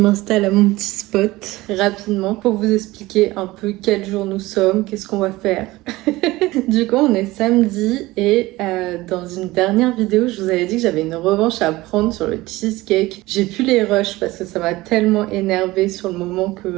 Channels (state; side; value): quieter; left; 19.2 dB